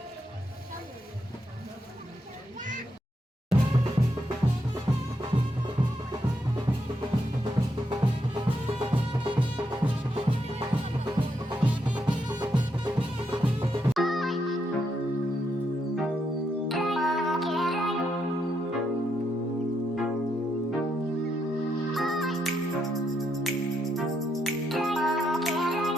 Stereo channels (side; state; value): both; normal; correlation 0.79